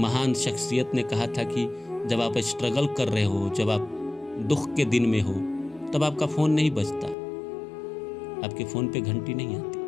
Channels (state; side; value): drops out; right; at 7.2 s